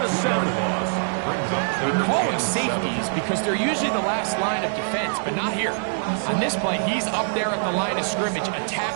they're usually the last line of defense, but not here. On this play, he's up there at the line of scrimmage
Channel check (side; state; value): left; silent; digital silence